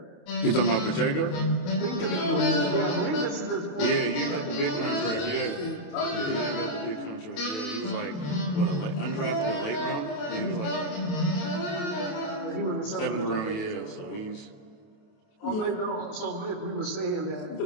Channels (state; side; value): late; right; 28 ms